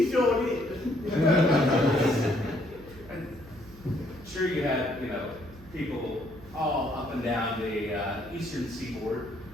sure did. Sure, you had, people all up and down the eastern seaboard.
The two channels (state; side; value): noise; right; hum, 20 dB below the sound